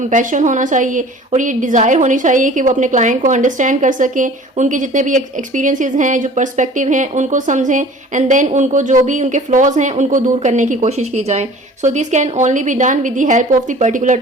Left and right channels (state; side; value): normal; both; correlation 0.46